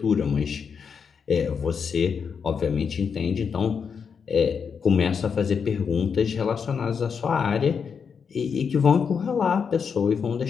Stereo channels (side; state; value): right; quieter; 6.3 dB